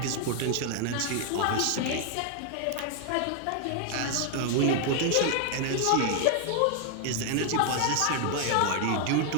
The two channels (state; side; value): different; both; correlation 0.00